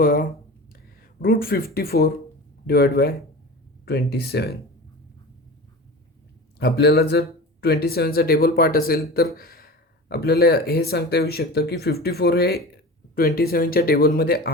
√54 डिवाइड बाय 27. आपल्याला जर 27चा टेबल पार्ट असेल तर आपल्याला हे सांगता येऊ शकतं की 54 हे 27च्या टेबलमध्ये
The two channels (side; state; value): both; normal; correlation 0.33